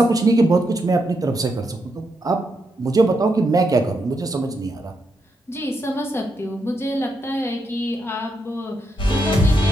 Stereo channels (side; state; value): both; normal; correlation 0.81